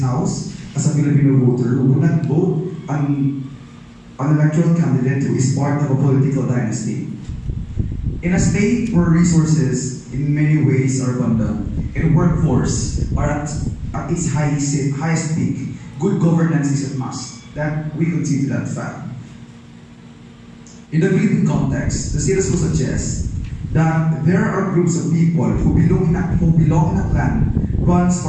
as a Filipino voter, would not vote an electoral candidate who is part of a political dynasty. In a state where resources in many ways are abundant and workforce are at its highest peak, good governance is a must. That we concede to that fact. In the Philippine context, the status quo suggests that there are groups of people who belong in a clan runs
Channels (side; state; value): both; identical; correlation 1.00